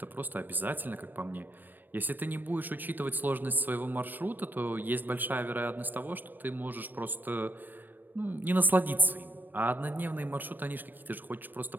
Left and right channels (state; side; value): late; left; 0.091 ms